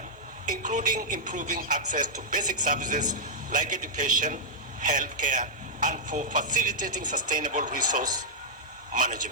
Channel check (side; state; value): both; normal; correlation -0.08